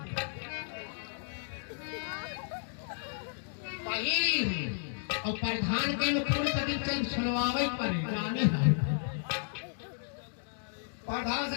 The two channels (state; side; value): silent; right; digital silence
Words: पहली और प्रधान के अनुकूल कभी चल सुनवावे पर जाने है। प्रधान से